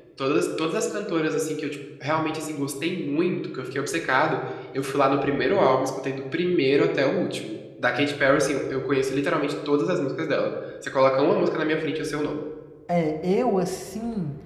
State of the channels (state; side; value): identical; both; correlation 1.00